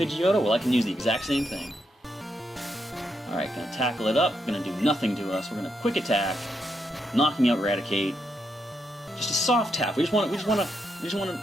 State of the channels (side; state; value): both; normal; correlation 0.80